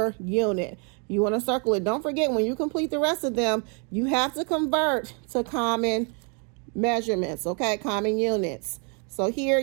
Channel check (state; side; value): quieter; left; 37.7 dB